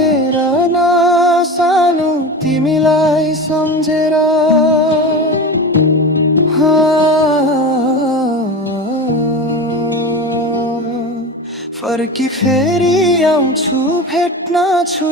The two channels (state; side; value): normal; both; correlation 0.28